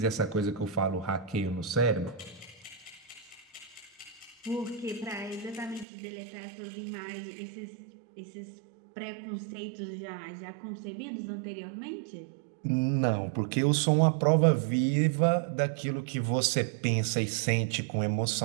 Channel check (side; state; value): left; drops out; at 5.9 s